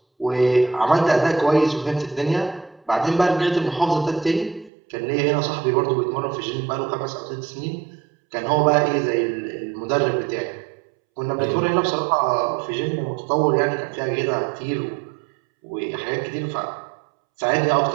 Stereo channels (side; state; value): left; drops out; at 4.7 s